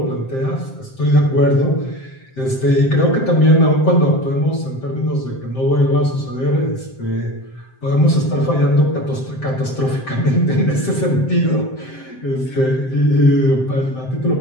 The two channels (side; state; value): right; late; 7.7 ms